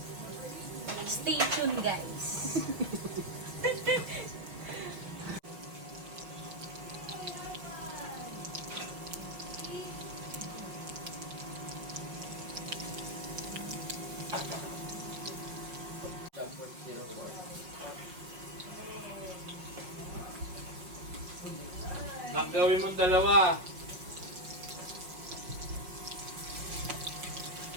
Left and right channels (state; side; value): late; left; 5.5 ms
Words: Stay tuned, guys. Gawin mong dalawa.